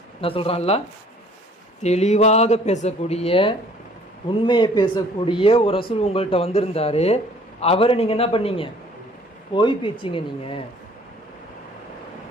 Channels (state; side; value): normal; both; correlation 0.55